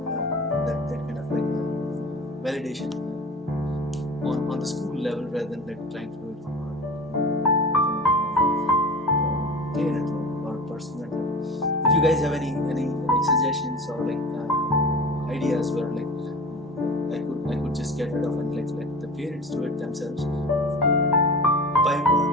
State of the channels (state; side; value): normal; both; correlation 0.34